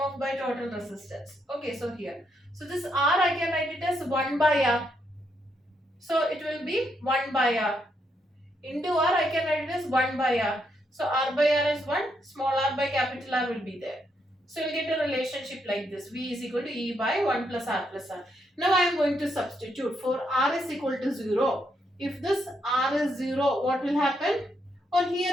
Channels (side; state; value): both; normal; correlation 0.78